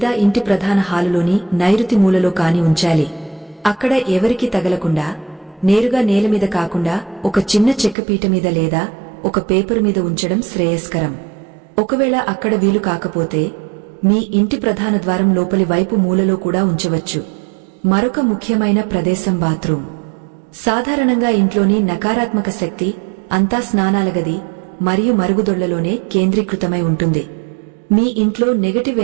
ఇంటి ప్రధాన హాలులోని నైరుతి మూలలో కాని ఉంచాలి. అక్కడ ఎవరికీ తగలకుండా, నేరుగా నేలమీద కాకుండా ఒక చిన్న చెక్కపీట మీద లేదా ఒక పేపరు మీద ఉంచడం శ్రేయస్కరం. ఒకవేళ అక్కడ వీలు కాకపోతే మీ ఇంటి ప్రధాన ద్వారం లోపలి వైపు మూలలో కూడా ఉంచవచ్చు. మరొక ముఖ్యమైన ప్రదేశం బాత్రూం. సాధారణంగా ఇంట్లోని నకారాత్మక శక్తి అంతా స్నానాల గది మరియు మరుగుదొళ్లలోనే కేంద్రీకృతమై ఉంటుంది. మీ ఇంట్లో నెగటివ్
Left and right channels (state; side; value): drops out; left; at 8.0 s